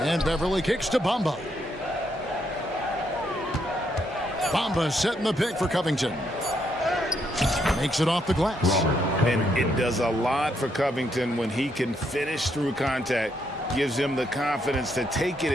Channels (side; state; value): both; normal; correlation 0.76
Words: Beverly kicks to Bamba. Bamba setting the pick for Covington. Makes it off the glass. And it does a lot for Covington when he can finish through contact. Gives him the confidence to take it